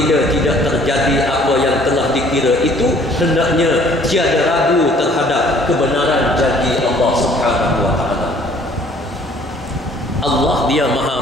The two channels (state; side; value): normal; both; correlation 0.57